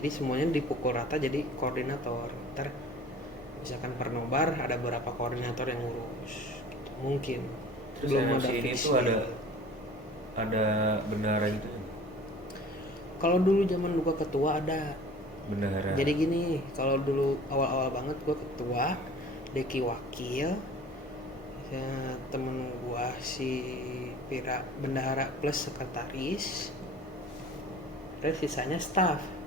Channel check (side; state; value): both; normal; correlation 0.44